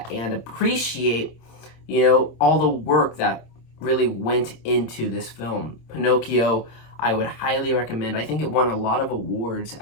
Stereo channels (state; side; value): late; right; 26 ms